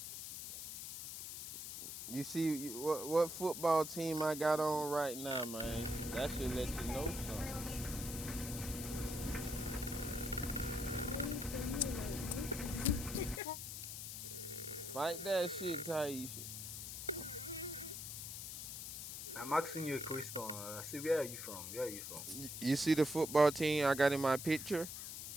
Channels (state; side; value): noise; left; hiss, 7 dB below the sound